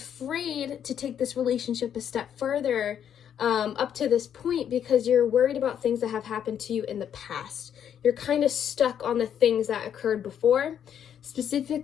to take this relationship a step further up to this point because you're worried about things that have happened to you in the past. You're kind of stuck on the things that occurred before.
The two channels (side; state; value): right; quieter; 9.0 dB